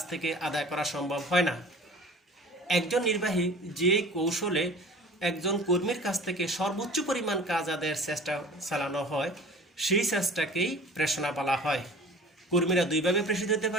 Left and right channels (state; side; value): normal; both; correlation 0.43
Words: থেকে আদায় করা সম্ভব হয় না। একজন নির্বাহী যে কৌশলে একজন কর্মীর কাছ থেকে সর্বোচ্চ পরিমাণ কাজ আদায়ের চেষ্টা চালানো হয় সেই চেষ্টাকেই প্রেষণা বলা হয়। কর্মীরা দুইভাবে প্রেষিত হতে